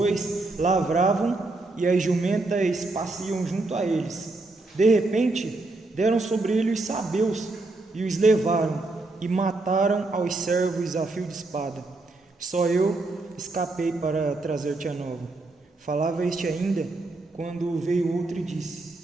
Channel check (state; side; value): quieter; left; 3.1 dB